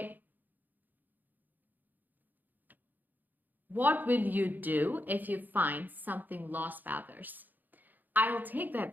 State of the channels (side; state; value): left; late; 0.086 ms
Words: What will you do if you find something lost by others? I'll take